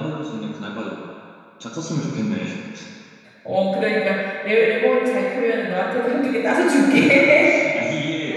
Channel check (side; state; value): both; identical; correlation 1.00